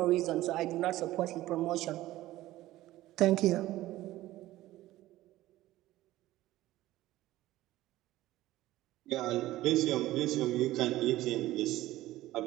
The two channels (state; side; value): quieter; left; 16.0 dB